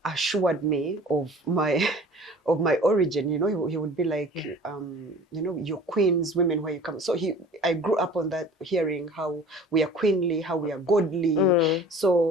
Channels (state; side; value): normal; both; correlation 0.45